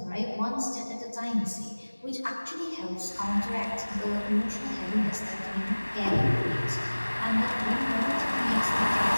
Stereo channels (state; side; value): inverted; both; correlation -1.00